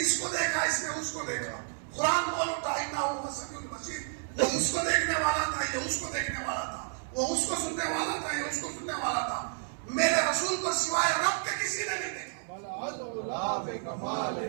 اس کو دیکھا، اس نے اس کو دیکھا۔ قرآن بول اٹھا انہ سمیع البصیر، وہ اس کو دیکھنے والا تھا، یہ اس کو دیکھنے والا تھا، وہ اس کو سننے والا تھا، یہ اس کو سننے والا تھا، میرے رسول کو سوائے رب کے کسی نے نہیں دیکھا۔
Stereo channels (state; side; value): silent; left; 57 dB below the other